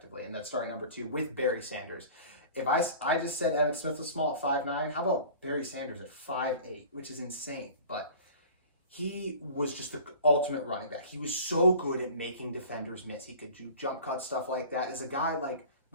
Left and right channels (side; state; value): both; inverted; correlation -0.41